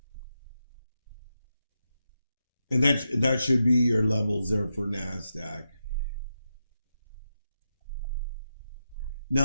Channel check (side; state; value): both; inverted; correlation -0.87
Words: And that should be your levels there for NASDAQ.